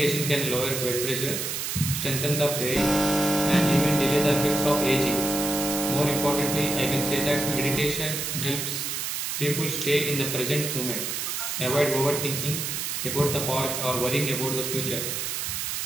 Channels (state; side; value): noise; right; hiss, 2 dB below the sound